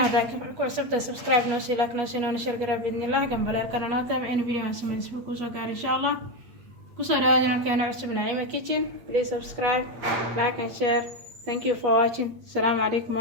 hada ku cusubta subscribe noo sii like noo sii noo sheergaray باذن الله gambalaalkana naata in video aan sameeyo isku ku soo gaar insha Allah ku soo dhawaada jankeena cusub Naima Kitchen please subscribe like and share thank you for watching assalamu alaykum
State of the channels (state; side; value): late; left; 8.7 ms